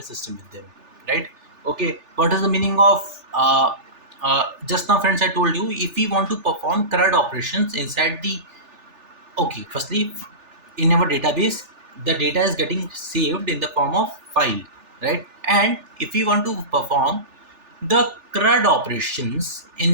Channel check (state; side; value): late; left; 3.4 ms